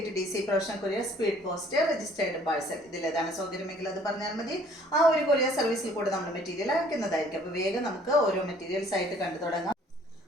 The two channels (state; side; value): normal; both; correlation 0.57